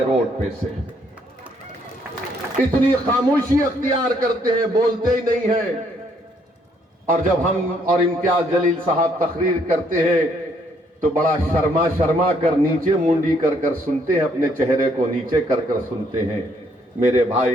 रोड पे से। इतनी खामोशी अख्तियार करते हैं, बोलते ही नहीं है। और जब हम और इम्तियाज जलील साहब तकरीर करते हैं तो बड़ा शर्मा शर्मा कर नीचे मुंडी कर कर सुनते हैं, अपने चेहरे को नीचे कर कर सुनते हैं। मेरे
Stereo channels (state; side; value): normal; both; correlation 0.69